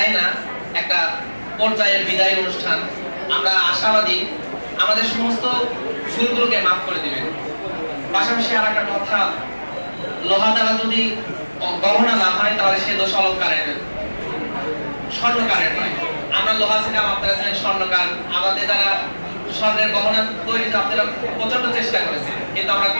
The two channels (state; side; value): inverted; both; correlation -1.00